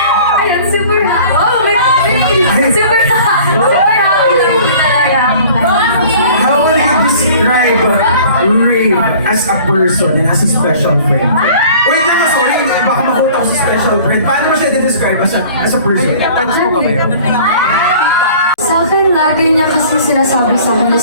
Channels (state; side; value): inverted; both; correlation -0.48